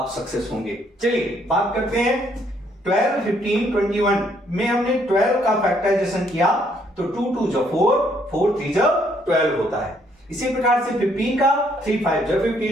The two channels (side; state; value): both; normal; correlation 0.68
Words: सक्सेस होंगे। चलिए बात करते हैं 12, 15, 21 में हमने 12 का फैक्टराइजेशन किया तो 2 2 जा 4, 4 3 जा 12 होता है। इसी प्रकार से 15 का 3 5 जा